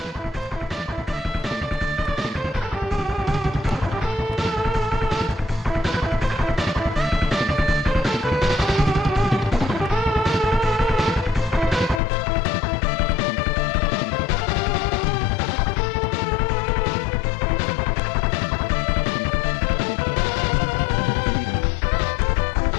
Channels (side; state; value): right; drops out; at 12.0 s